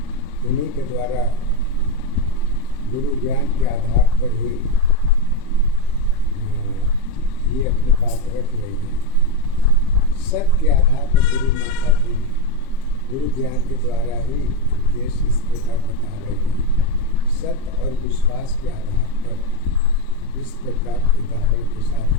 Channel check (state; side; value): late; left; 23 ms